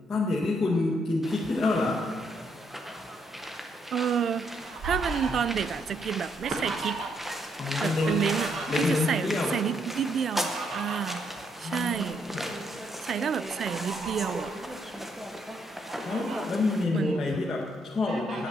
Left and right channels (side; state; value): both; normal; correlation 0.74